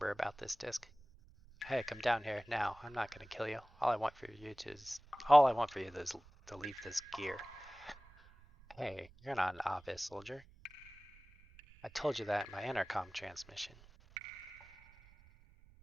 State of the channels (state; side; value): noise; right; rumble, 24 dB below the sound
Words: about this disc. Hey, come down here now. I'm not gonna kill you. All I want for you is to leave this gear. Hey, you're not an obvious soldier. I told you that in my intercom transmission.